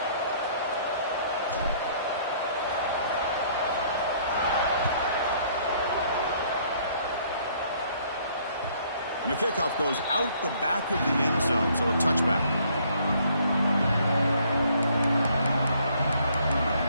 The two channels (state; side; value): inverted; both; correlation -0.62